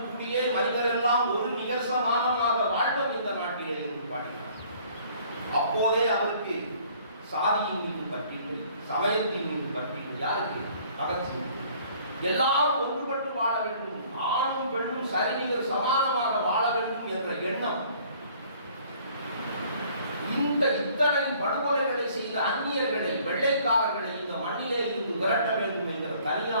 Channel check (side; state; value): both; inverted; correlation -0.56